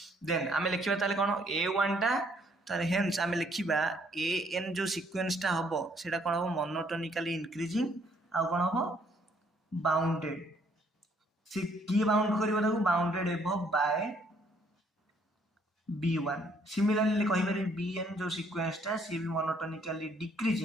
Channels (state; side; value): normal; both; correlation 0.66